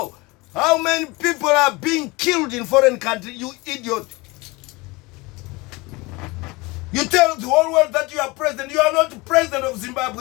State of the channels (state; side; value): quieter; right; 24.1 dB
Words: how many people are being killed in foreign countries, you idiot. You tell the whole world that you are president. You are not the president of